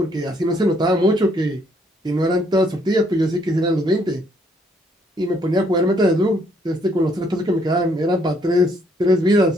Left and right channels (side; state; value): both; normal; correlation 0.68